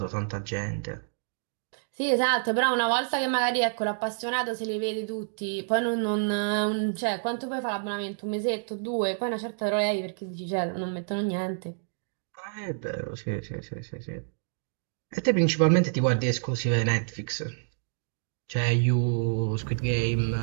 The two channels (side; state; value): left; silent; digital silence